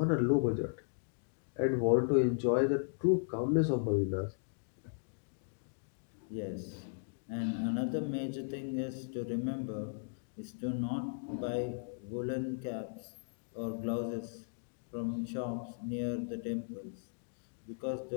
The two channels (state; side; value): silent; right; digital silence